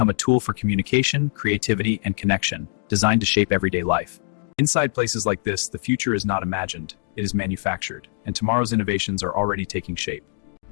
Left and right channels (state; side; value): silent; right; digital silence